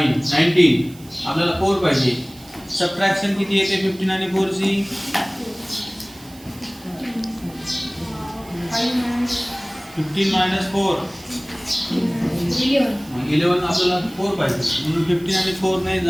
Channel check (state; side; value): noise; right; hiss, 22 dB below the sound